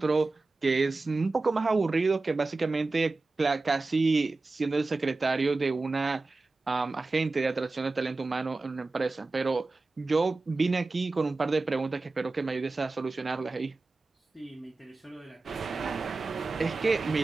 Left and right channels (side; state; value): left; quieter; 3.5 dB